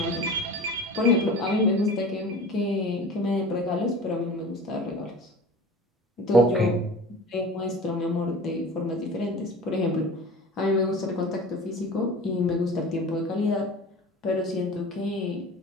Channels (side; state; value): both; normal; correlation 0.38